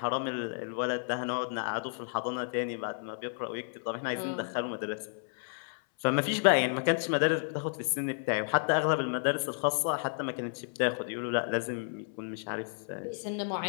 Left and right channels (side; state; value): right; silent; 57 dB below the other